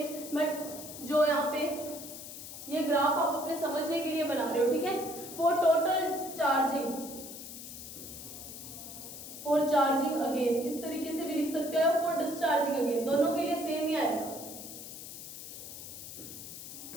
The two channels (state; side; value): noise; left; hiss, 11 dB below the sound